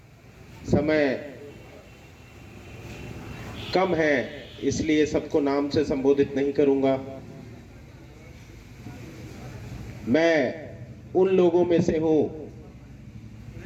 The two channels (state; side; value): identical; both; correlation 1.00